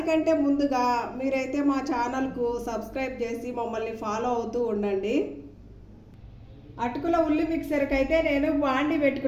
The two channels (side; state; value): both; identical; correlation 1.00